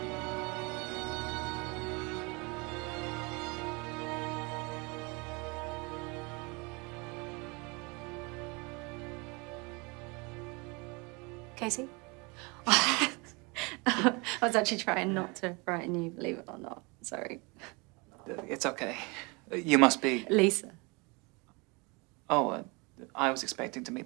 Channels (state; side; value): quieter; left; 28.6 dB